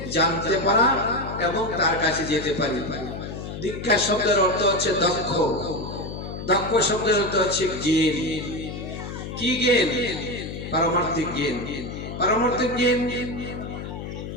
জানতে পারা এবং তার কাছে যেতে পারি। দীক্ষা শব্দের অর্থ হচ্ছে দক্ষ। দক্ষ শব্দের অর্থ হচ্ছে জ্ঞান। কি জ্ঞান? পারমার্থিক জ্ঞান। পারমার্থিক জ্ঞান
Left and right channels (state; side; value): noise; left; hum, 8 dB below the sound